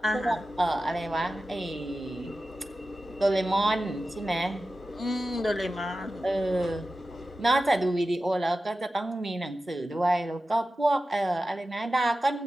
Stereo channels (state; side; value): normal; both; correlation 0.94